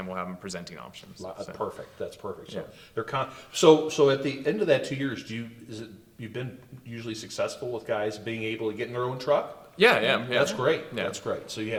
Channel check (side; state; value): both; identical; correlation 1.00